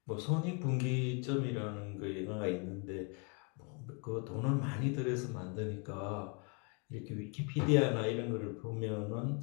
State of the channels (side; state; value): right; quieter; 34.6 dB